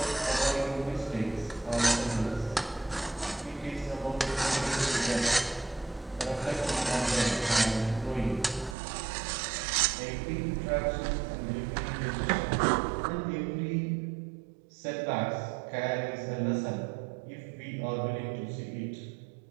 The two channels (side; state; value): left; drops out; at 8.8 s